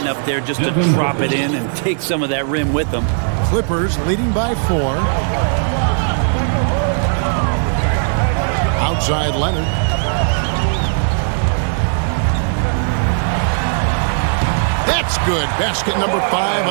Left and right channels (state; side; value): silent; left; 65 dB below the other